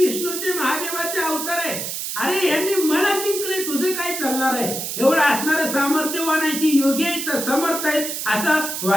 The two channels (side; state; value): right; noise; hiss, 4 dB below the sound